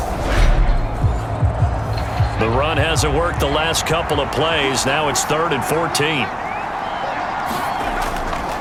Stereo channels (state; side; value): identical; both; correlation 1.00